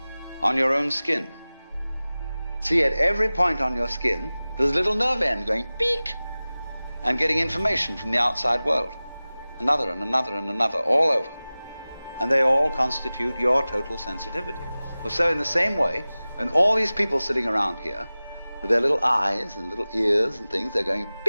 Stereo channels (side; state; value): both; inverted; correlation -0.98